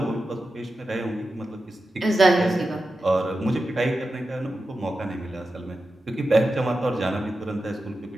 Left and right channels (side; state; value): both; normal; correlation 0.91